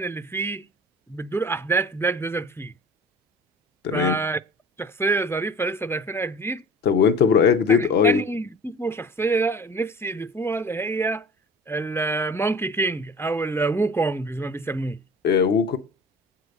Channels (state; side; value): normal; both; correlation 0.42